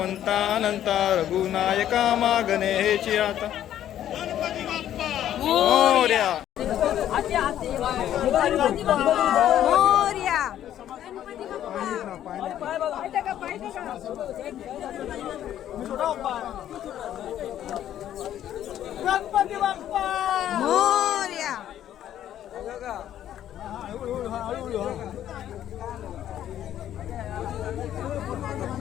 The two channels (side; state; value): right; quieter; 11.3 dB